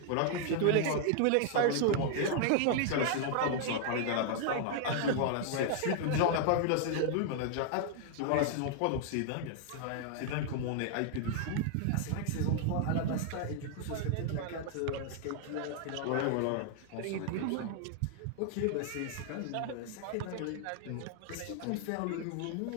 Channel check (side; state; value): both; different; correlation 0.00